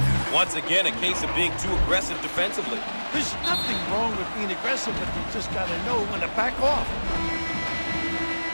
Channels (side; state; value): both; inverted; correlation -1.00